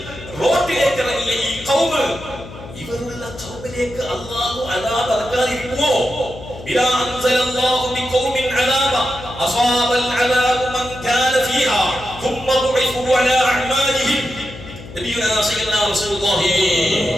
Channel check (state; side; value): noise; left; hum, 15 dB below the sound